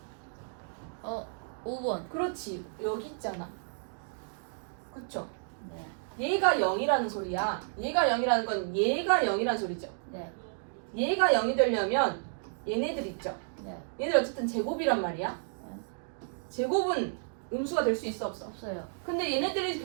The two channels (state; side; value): silent; left; digital silence